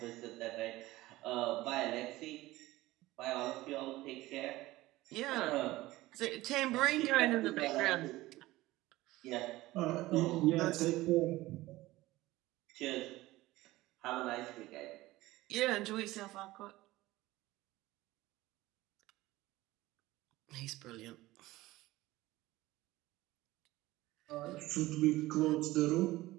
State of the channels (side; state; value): left; quieter; 18.0 dB